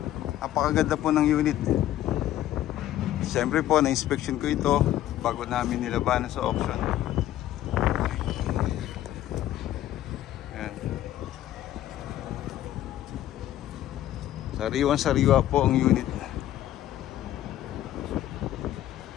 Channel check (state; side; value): quieter; right; 13.1 dB